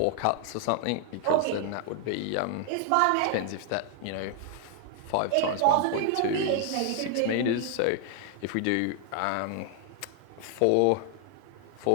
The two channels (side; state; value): both; different; correlation 0.00